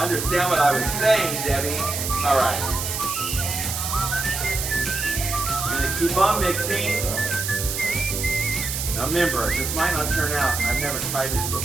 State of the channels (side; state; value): right; noise; hiss, 3 dB below the sound